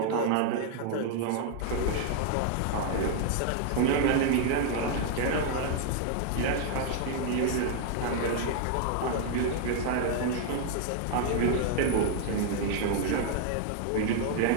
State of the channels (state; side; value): different; both; correlation 0.00